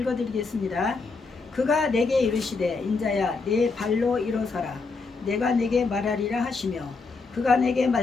그가 내게 이르시되 인자야 내 발로 일어서라 내가 내게 말하리라 하시며 그가 내게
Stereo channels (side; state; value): right; quieter; 4.2 dB